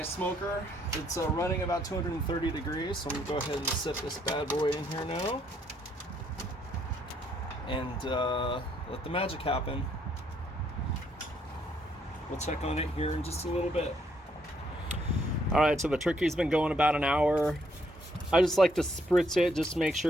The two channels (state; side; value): normal; both; correlation 0.70